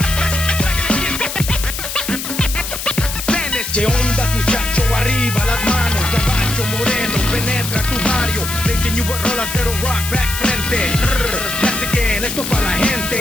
¿Qué ondas, muchacho? Arriba las manos, caballo moreno, penetra tu barrio. Racing you with rolas de rock back frente. That's again, esto pa' la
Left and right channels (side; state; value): left; noise; hiss, 6 dB below the sound